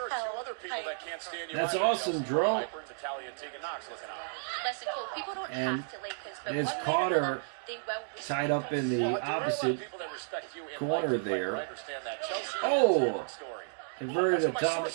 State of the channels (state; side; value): silent; left; digital silence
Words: are hell two other people type. that can't stand you That's either. awesome, Chelsea Dro. Piper and Natalia and Tegan Knox looking out. Listen, Cole, people don't And have to like us, but it's one way or Carter another, they will respect tied up us. in the Well, there are a lot of opposite people that respect you and corner like you, there. Piper. I understand that. Chelsea, Oh. that's a different story. Converted That's to what my top.